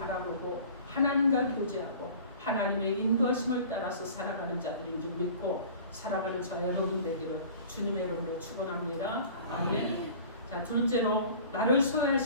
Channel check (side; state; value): both; inverted; correlation -0.44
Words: 하나님과 교제하고 하나님의 인도하심을 따라서 살아가는 자들인 줄 믿고 살아가는 저 여러분 되기를 주님의 이름으로 축원합니다. 아멘. 자 둘째로 나를